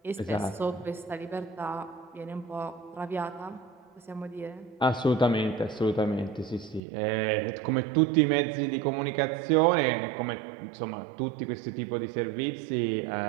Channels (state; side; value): drops out; left; at 6.8 s